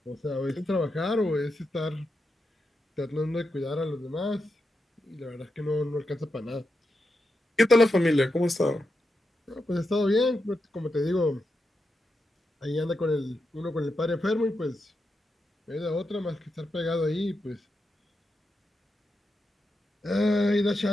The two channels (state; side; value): normal; both; correlation 0.87